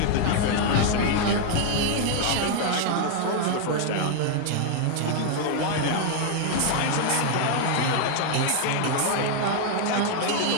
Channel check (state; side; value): different; both; correlation 0.00